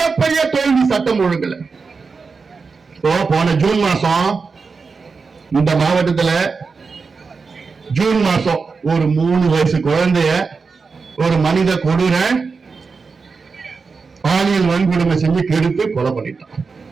தோல்வி. சட்டம் ஒழுங்குல போன ஜூன் மாசம் இந்த மாவட்டத்தில் ஜூன் மாசம் ஒரு 3 வயசு குழந்தைய ஒரு மனித கொடூர பாலியல் வன்கொடுமை செஞ்சு கெடுத்து கொலை பண்ணிட்டான்.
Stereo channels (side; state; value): left; quieter; 4.7 dB